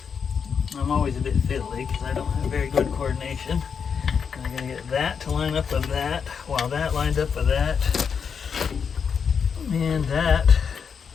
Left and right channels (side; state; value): right; quieter; 6.5 dB